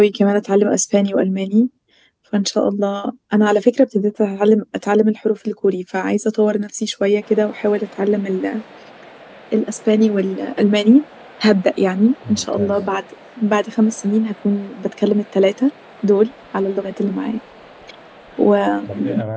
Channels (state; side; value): identical; both; correlation 1.00